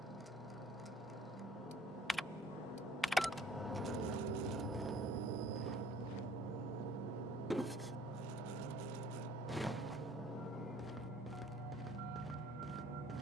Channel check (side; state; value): both; normal; correlation 0.56